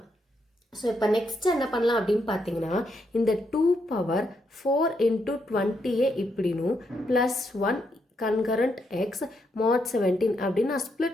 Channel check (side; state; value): both; normal; correlation 0.79